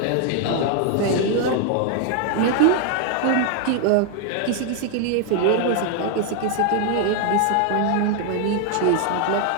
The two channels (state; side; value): different; both; correlation 0.00